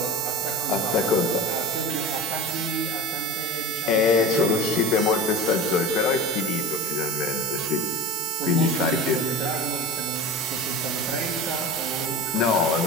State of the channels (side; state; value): both; normal; correlation 0.32